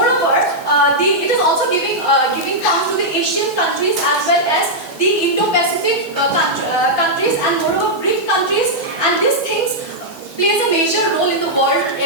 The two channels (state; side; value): normal; both; correlation -0.07